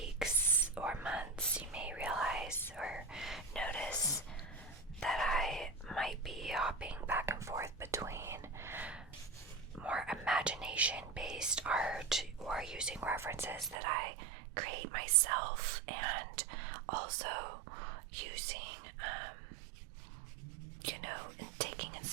or months, you may realize or notice that I might be hopping back and forth between more imagination-based art or using references that I create myself, and also using, and taking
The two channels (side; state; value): left; drops out; at 13.8 s